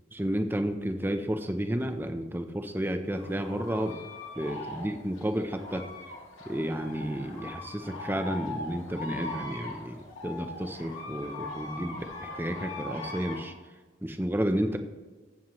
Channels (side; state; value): both; normal; correlation 0.82